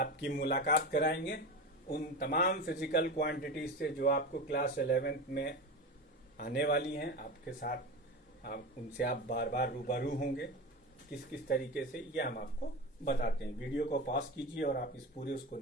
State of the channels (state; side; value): normal; both; correlation 0.25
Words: मुलाकात कराएंगे उन तमाम फिजिकल क्वांटिटीज से जो आपको क्लास 11th में आने वाली हैं। आपके साथ उनसे आप बार बार रूबरू होंगे। किस किस तरीके से, ये हम आपको बताते हैं। वीडियो को पॉज कीजिए और आप इस पूरे उसको